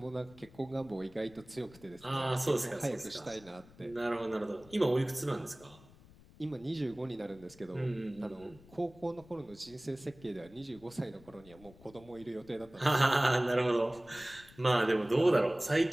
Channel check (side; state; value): left; noise; rumble, 23 dB below the sound